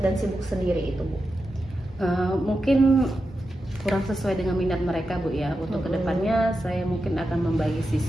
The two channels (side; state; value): both; normal; correlation 0.89